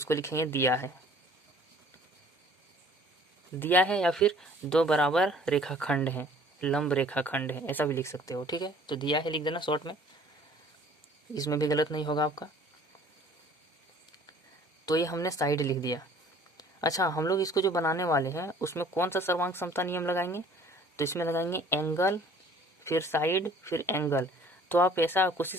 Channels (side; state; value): both; normal; correlation 0.53